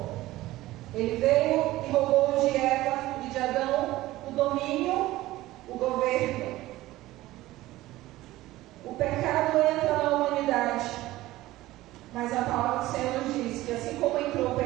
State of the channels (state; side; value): quieter; left; 16.9 dB